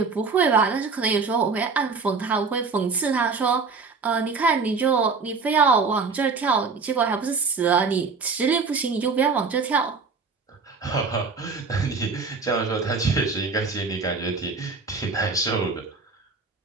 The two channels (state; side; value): quieter; left; 4.7 dB